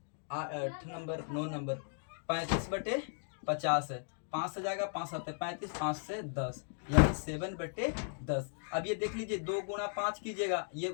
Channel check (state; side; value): silent; right; digital silence